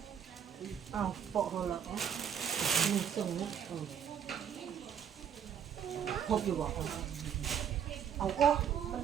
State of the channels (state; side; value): quieter; left; 8.4 dB